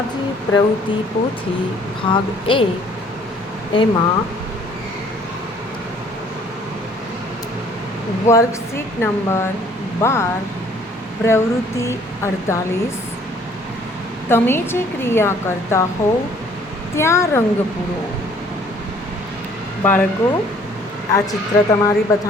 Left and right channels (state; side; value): normal; both; correlation 0.58